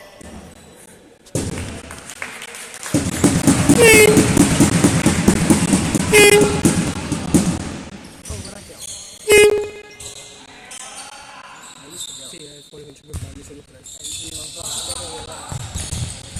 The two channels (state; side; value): identical; both; correlation 1.00